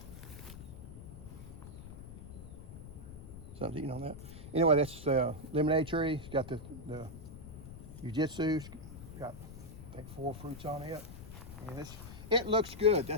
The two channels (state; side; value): noise; left; rumble, 13 dB below the sound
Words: Something eating on that. Anyway, that's lemonade tree. It's got the Jiu-Jitsu. Got, I think, 4 fruits on it. And it looks good.